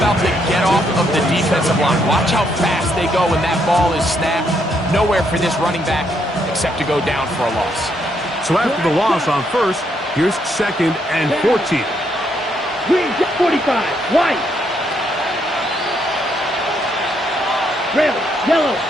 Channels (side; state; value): both; normal; correlation 0.74